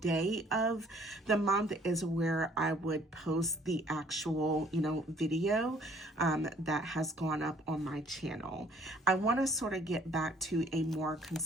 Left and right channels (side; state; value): both; normal; correlation 0.59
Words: of the month is where I would post the actual, video that has gone up on my channel. I want to sort of get back to a more